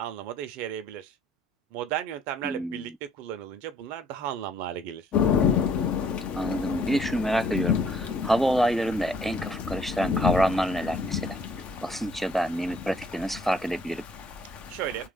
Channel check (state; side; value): normal; both; correlation 0.61